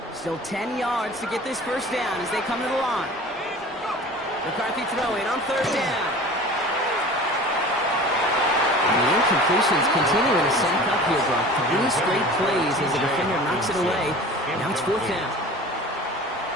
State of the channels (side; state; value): both; normal; correlation 0.40